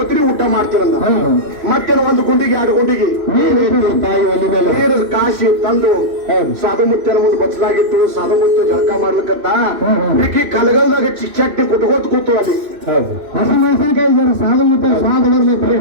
ಊಟ ಮಾಡ್ತೀರಂದ ಮತ್ತೇನು ಒಂದು ಗುಂಡಿಗೆ 2 ಗುಂಡಿಗೆ ತಾಯಿ ಒಲಿ ಮೇಲೆ ನೀರು ಕಾಸಿ ತಂದು ಸಾಧು ಮುತ್ಯನ ಮುಂದೆ ಬಚ್ಚಲಾಗಿತ್ತು ಸಾಧು ಮುತ್ಯ ಜಳಕ ಮಾಡ್ಲಿಕ್ಕಂತ ಈಕಿ ಕಲಗಲ್ದಾಗ ಚಟ್ನಿ ಕುಟ್ಕೋತ ಕೂತು ಅಲ್ಲಿ ಹಸಿ ಮೆಣಸಿನಕಾಯಿ ಜನ ಸಾಧು ಮತ್ತೆ ಸ್ವಾದ ಬರ್ಬೇಕು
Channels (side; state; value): left; late; 2.6 ms